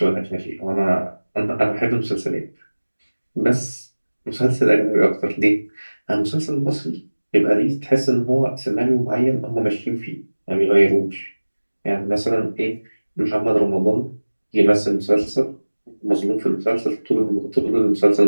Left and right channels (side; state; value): both; inverted; correlation -1.00